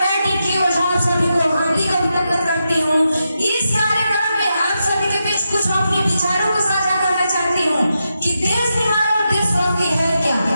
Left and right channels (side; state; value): both; inverted; correlation -0.86